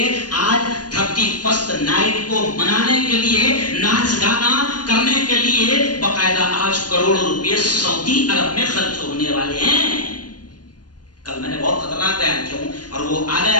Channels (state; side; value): late; right; 0.69 ms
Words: آج 31 نائٹ کو منانے کے لیے، ناچ گانا کرنے کے لیے باقاعدہ آج کروڑوں روپئے سعودی عرب میں خرچ ہونے والے ہیں. کل میں نے بہت خطرناک بیان کیا ہوں اور وہ آ